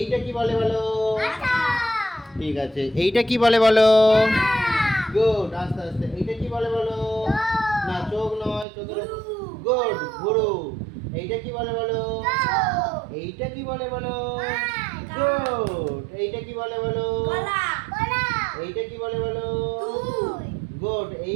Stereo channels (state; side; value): drops out; left; at 8.7 s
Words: কি বলে বলো। ঠিক আছে, এইটা কি বলে বলো। গুড, আস্তে আস্তে। এইটা কি বলে বলো। না, চোখ নয়, চোখের গুড, ভুরু। এইটা কি বলে বলো। এইটা কি বলে বলো। গুড, এইটা কি বলে বলো। এইটা কি বলে বলো। গুড,